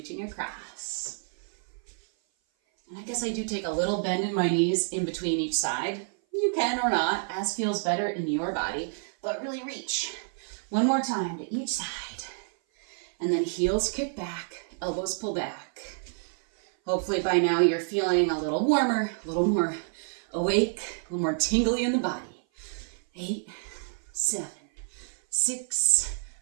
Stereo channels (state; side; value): silent; left; 56 dB below the other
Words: across. And I guess I do take a little bend in my knees in between each side. You can or not, as feels better in your body, but really reach. One more time to each side. And then heels kick back, elbows pull back. Hopefully by now you're feeling a little warmer, a little more awake, a little more tingly in the body. 8, 7, 6,